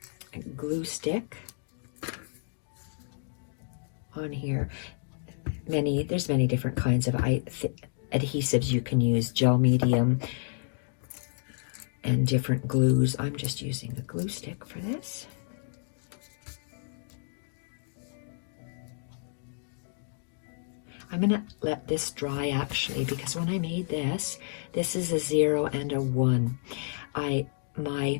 glue stick on here. There's many different kinds of adhesives you can use, gel medium, and different glues. I'm just using the glue stick for this. I'm gonna let this dry actually, because when I made this is a 0 and a 1. my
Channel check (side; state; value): right; silent; digital silence